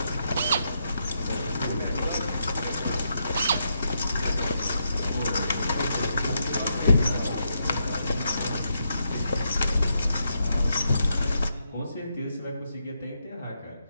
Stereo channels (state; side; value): inverted; both; correlation -0.81